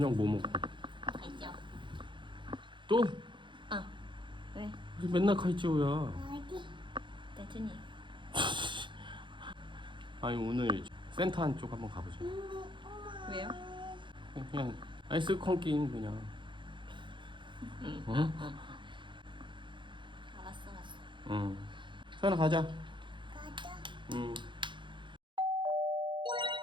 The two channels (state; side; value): late; left; 0.23 ms